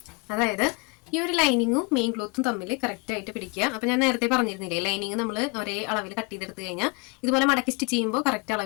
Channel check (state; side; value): quieter; right; 31.3 dB